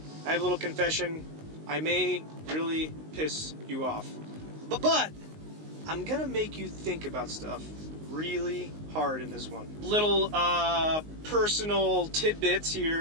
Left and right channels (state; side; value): late; left; 19 ms